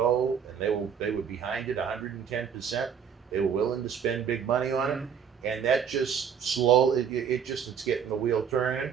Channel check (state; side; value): quieter; left; 7.5 dB